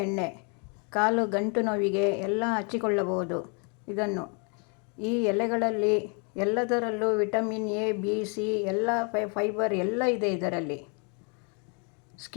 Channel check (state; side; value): quieter; right; 36.3 dB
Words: ಎಣ್ಣೆ. ಕಾಲು ಗಂಟು ನೋವಿಗೆ ಎಲ್ಲ ಹಚ್ಚಿಕೊಳ್ಳಬಹುದು. ಇದನ್ನು ಈ ಎಲೆಗಳಲ್ಲಿ ಎಲ್ಲದರಲ್ಲೂ ವಿಟಮಿನ್ ಎ, ಬಿ, ಸಿ, ಎಲ್ಲ ಫೈಬರ್ ಎಲ್ಲ ಇದೆ ಇದರಲ್ಲಿ.